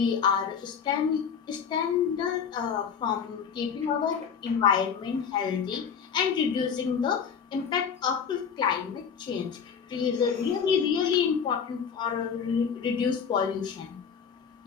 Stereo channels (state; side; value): quieter; right; 6.9 dB